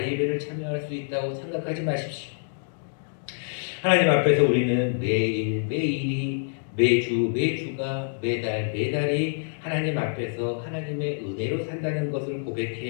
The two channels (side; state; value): right; silent; digital silence